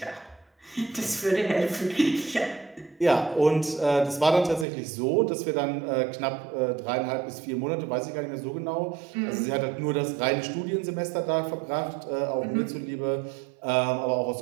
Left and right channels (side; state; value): left; drops out; at 4.7 s